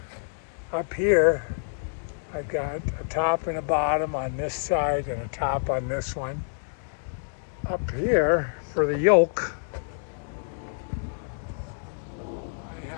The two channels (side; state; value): right; silent; digital silence